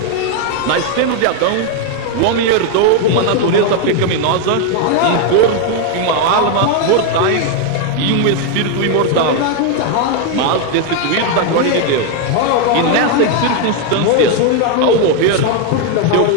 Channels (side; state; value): both; different; correlation 0.01